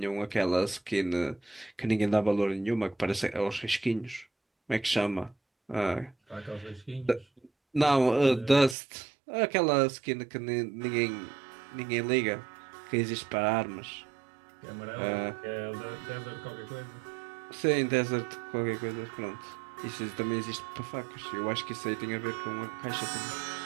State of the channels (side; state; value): left; drops out; at 8.8 s